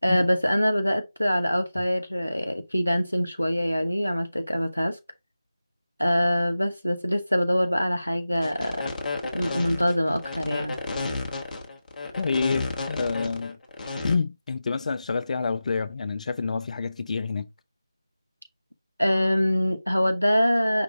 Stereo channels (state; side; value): inverted; both; correlation -0.94